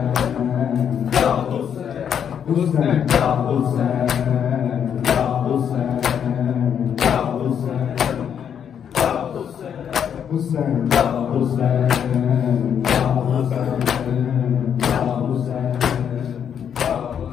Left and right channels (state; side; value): quieter; right; 8.3 dB